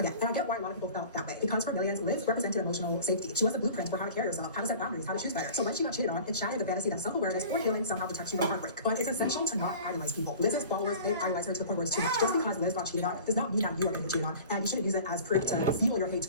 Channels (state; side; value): inverted; both; correlation -0.42